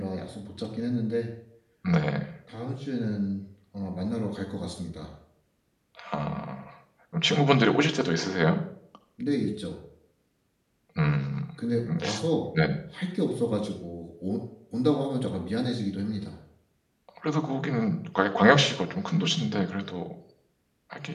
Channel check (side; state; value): both; identical; correlation 1.00